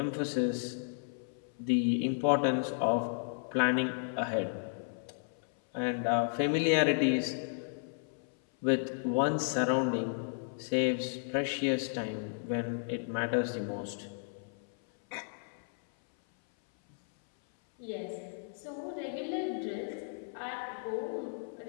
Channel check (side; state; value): right; silent; 55 dB below the other